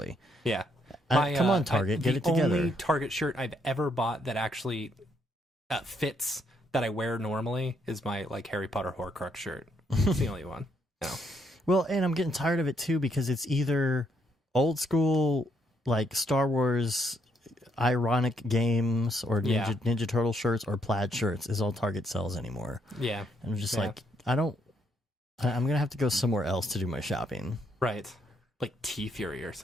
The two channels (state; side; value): normal; both; correlation 0.74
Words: Yeah. Come on, Target, get it together. The only Target shirt I've ever bought that actually fits that I wear normally is my like Harry Potter Horcrux shirt. It's the only one. No. Well, and I'm getting tired of it too because it's either old school like Star Wars ironic games or Ninja Turtle shirts or plaid shirts is all Target sells anymore. Yeah. And I'm just like, I'm gonna have to go somewhere else to do my shopping. Right. Like T-Fury or